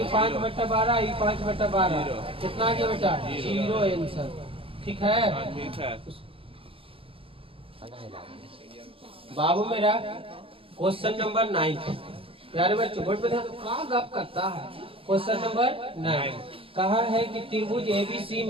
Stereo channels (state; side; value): late; left; 0.27 ms